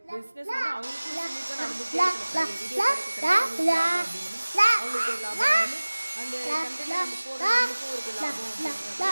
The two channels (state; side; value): inverted; both; correlation -1.00